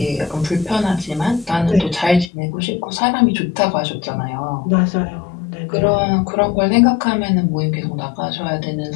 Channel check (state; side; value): drops out; right; at 2.3 s